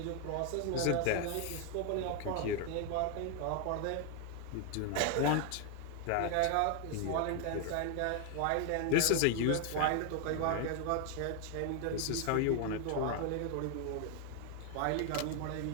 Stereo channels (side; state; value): both; different; correlation 0.00